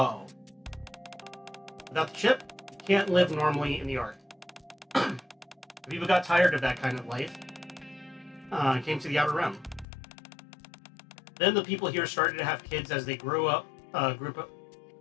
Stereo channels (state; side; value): drops out; right; at 9.9 s